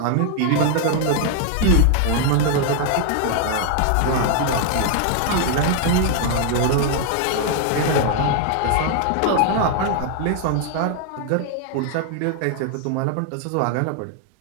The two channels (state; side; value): different; both; correlation 0.00